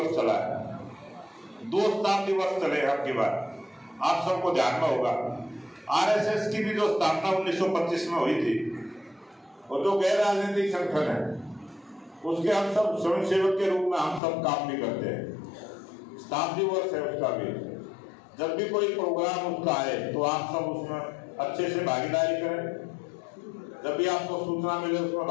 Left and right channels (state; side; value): drops out; right; at 14.2 s